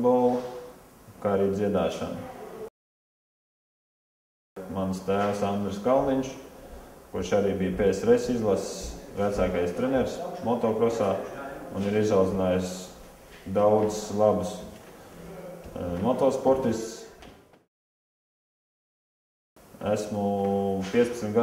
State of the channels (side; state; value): both; identical; correlation 1.00